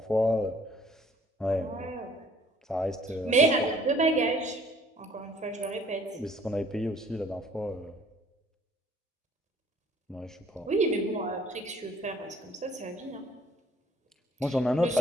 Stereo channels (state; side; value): normal; both; correlation 0.57